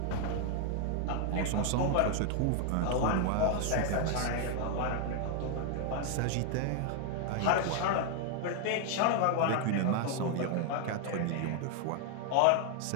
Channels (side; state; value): both; different; correlation 0.00